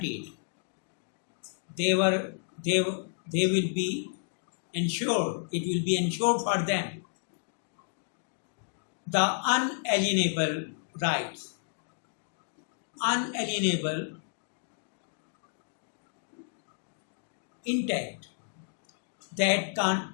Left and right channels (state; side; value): silent; right; digital silence